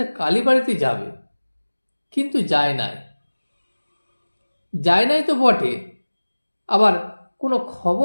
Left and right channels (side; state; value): both; inverted; correlation -1.00